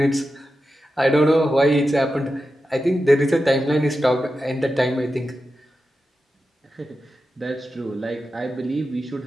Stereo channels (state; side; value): normal; both; correlation 0.91